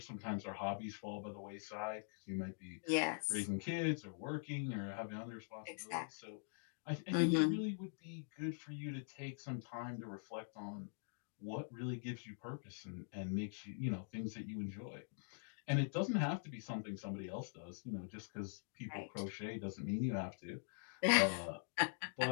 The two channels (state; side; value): silent; right; digital silence